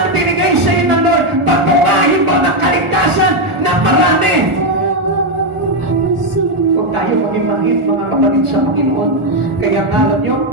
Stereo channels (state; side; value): late; left; 1.4 ms